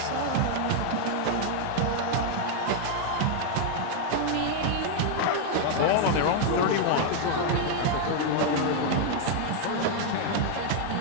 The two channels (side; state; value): both; different; correlation 0.00